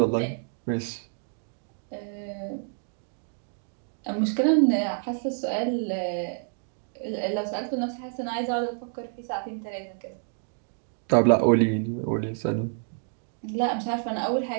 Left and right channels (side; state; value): left; silent; 59 dB below the other